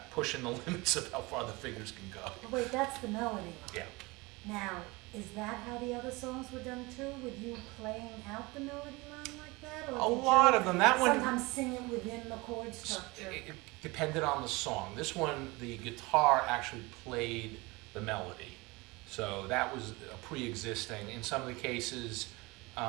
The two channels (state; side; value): quieter; left; 23.8 dB